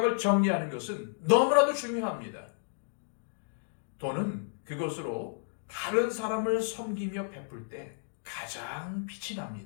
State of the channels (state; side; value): silent; right; digital silence